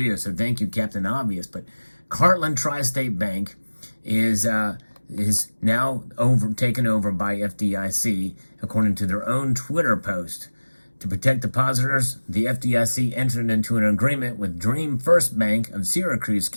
So thank you, Captain Obvious. But Heartland Tri-State Bank is now taken over by FDIC, according to their own Twitter post. To protect depositors, the FDIC entered into an agreement with Dream First Bank of Syracuse,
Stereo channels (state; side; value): inverted; both; correlation -1.00